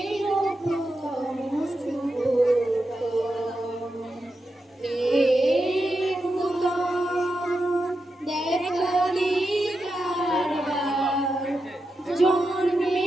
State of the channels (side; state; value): both; normal; correlation 0.88